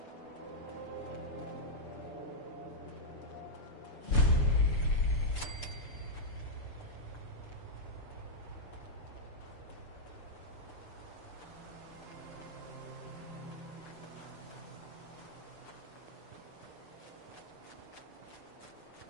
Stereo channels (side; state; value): right; late; 6.8 ms